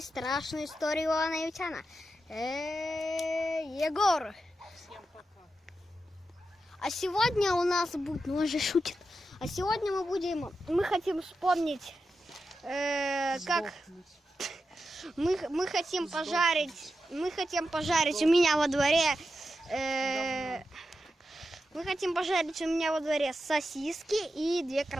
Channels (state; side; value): normal; both; correlation 0.89